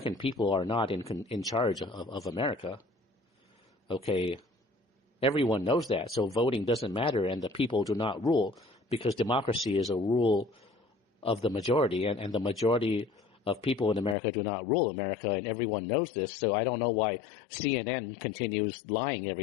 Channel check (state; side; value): drops out; right; at 14.2 s